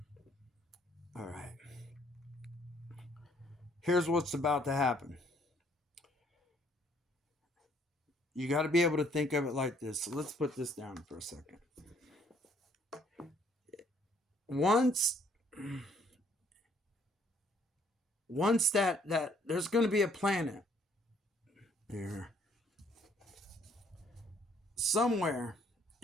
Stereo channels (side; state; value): both; normal; correlation 0.64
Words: all right. Here's what's about to happen. You got to be able to think of it like this. So let's put this down for a second. Once that there's going to be a planet here. somewhere